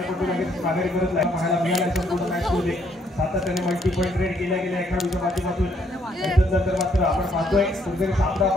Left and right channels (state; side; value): normal; both; correlation 0.69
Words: लगेच माघारी करत पाहायला मिळाला संपूर्ण मॅचमध्ये सातत्याने मल्टी पॉईंट रेड केल्या गेल्या खेळाडूच्या माध्यमातून. त्यानंतर मात्र आपण पाहतोय कुठेतरी सामना